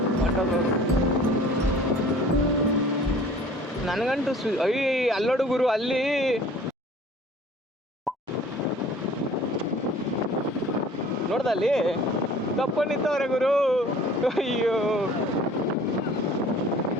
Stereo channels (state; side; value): normal; both; correlation 0.49